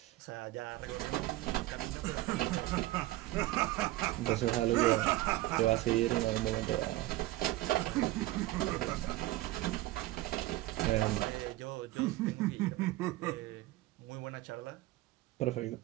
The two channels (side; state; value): left; quieter; 17.8 dB